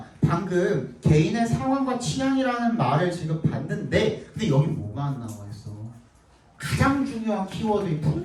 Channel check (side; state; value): both; identical; correlation 1.00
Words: 방금 개인의 상황과 취향이라는 말을 지금 봤는데 근데 여기 뭐가 안 나와 있어? 가장 중요한 키워드인